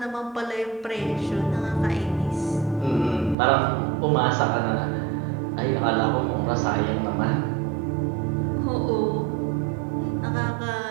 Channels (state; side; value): drops out; left; at 3.4 s